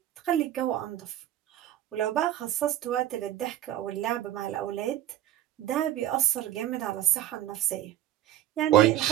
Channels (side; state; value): left; quieter; 12.6 dB